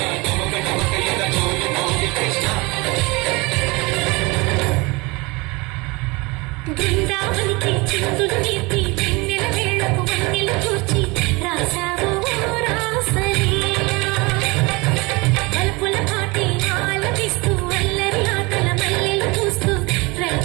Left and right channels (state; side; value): quieter; left; 25.5 dB